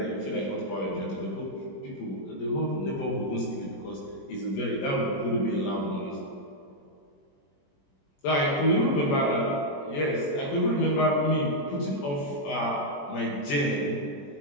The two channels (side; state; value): right; late; 21 ms